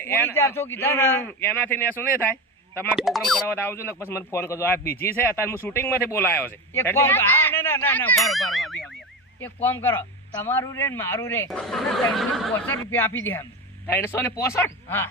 પૂરી 400 કીધા ને એનાથી ને શું નહીં થાય તમારે પ્રોગ્રામ કરાવવા તો આવજો ને પછી મને ફોન કરજો આ બીજી છે અત્યારે હું શૂટિંગ માંથી બોલાયો છે એક કામ હા ના ના ના પારો પારો એક કામ કરો તમારું રે ને મારું રે 365 રૂપિયા આપી દે અમે 365 હા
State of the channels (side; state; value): both; normal; correlation 0.22